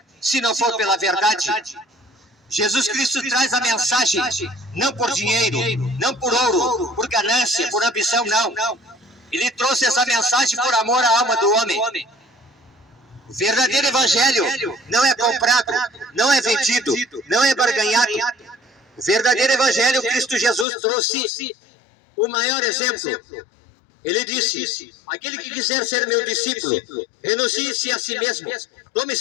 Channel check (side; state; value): right; drops out; at 20.7 s